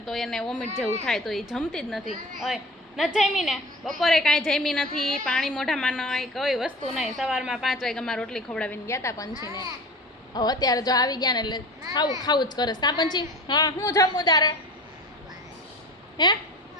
તો એને વોમિટ જેવું થાય તો એ જમતી જ નથી. હોય ન જમી ને બપોરે કાંઈ જમી નથી. પાણી મોઢામાં નહીં, કોઈ વસ્તુ નહીં. સવારમાં 5 વાગ્યામાં રોટલી ખવડાવીને ગયા હતા પંછીને. હવે અત્યારે જો આવી ગયા ને એટલે ખાવું જ કરે. કા પંછી? હા હું જમું તારે? હે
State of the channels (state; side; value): normal; both; correlation 0.37